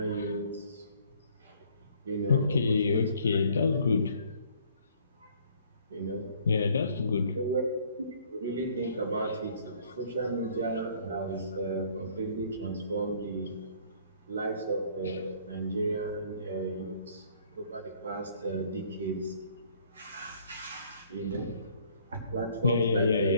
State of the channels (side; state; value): both; inverted; correlation -0.60